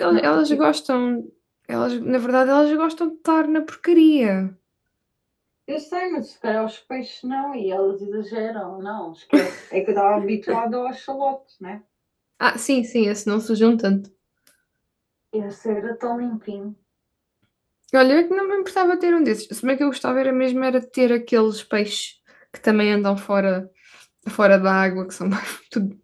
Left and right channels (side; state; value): both; identical; correlation 1.00